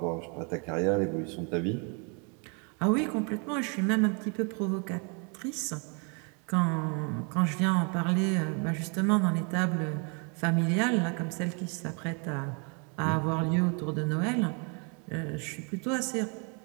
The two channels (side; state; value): left; quieter; 35.6 dB